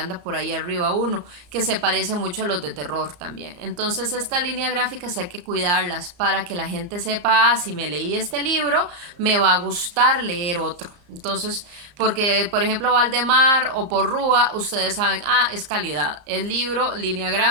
por ahí arriba uno, que se parece mucho a los de terror también. Entonces, estas líneas gráficas hay que cuidarlas para que la gente sepa, si me leí este libro, me va a gustar leer otro. Entonces, porque, por ejemplo, Valdemar o Porrúa, ustedes saben, es calidad. El libro, línea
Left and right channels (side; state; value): left; late; 34 ms